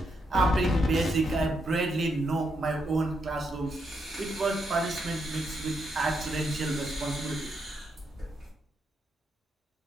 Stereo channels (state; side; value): normal; both; correlation 0.80